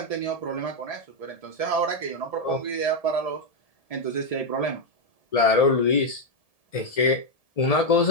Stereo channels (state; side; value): late; right; 1.7 ms